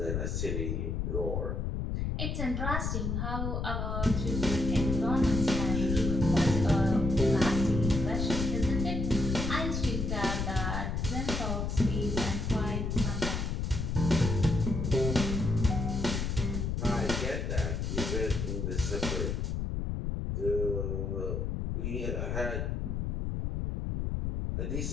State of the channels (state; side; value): noise; left; rumble, 1 dB below the sound